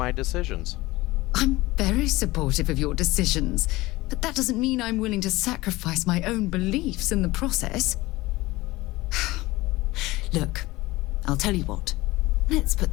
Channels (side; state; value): right; quieter; 19.7 dB